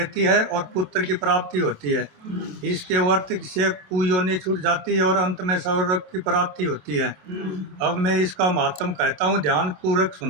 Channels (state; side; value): late; left; 27 ms